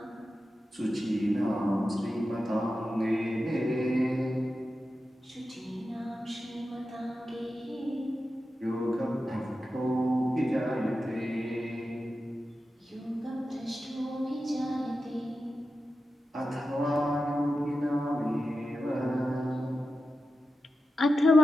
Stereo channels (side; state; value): both; normal; correlation 0.91